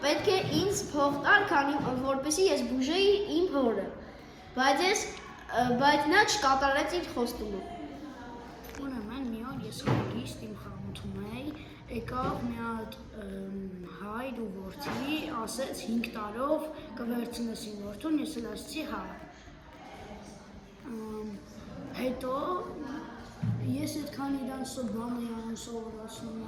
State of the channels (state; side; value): identical; both; correlation 1.00